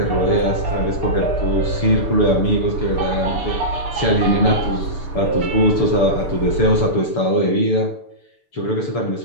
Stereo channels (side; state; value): right; late; 6.8 ms